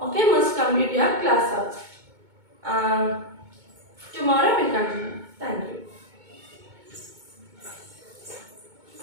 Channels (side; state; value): left; late; 2.2 ms